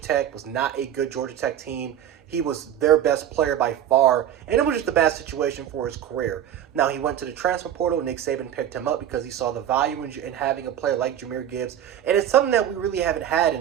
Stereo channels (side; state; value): left; quieter; 10.4 dB